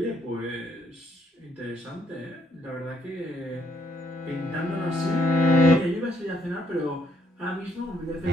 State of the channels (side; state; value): both; normal; correlation 0.71